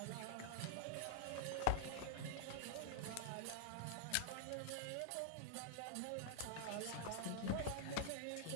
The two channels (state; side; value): different; both; correlation -0.01